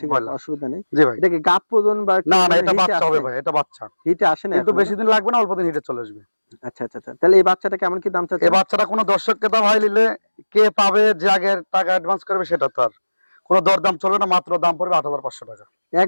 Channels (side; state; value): both; inverted; correlation -1.00